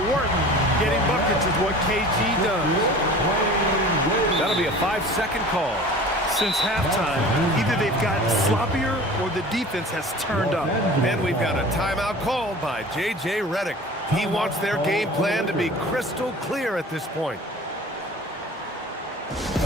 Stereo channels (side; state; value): both; normal; correlation 0.41